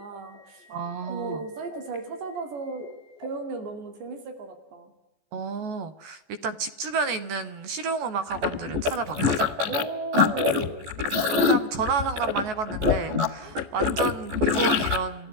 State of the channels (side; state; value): left; late; 14 ms